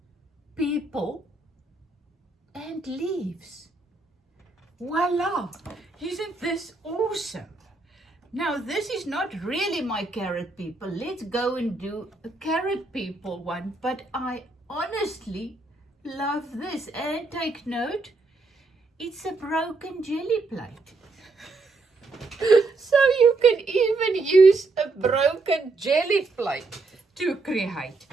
people and leaves. Voila! Isn't this awesome? Now, this is not really my carrot people. Let's go and do a carrot people one. But I honestly love this. And take note, it's a broken jelly plate. So you can even use a broken jelly plate to create.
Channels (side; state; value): left; quieter; 3.5 dB